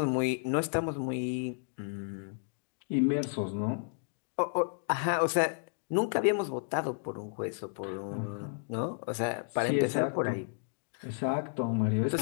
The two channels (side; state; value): right; silent; digital silence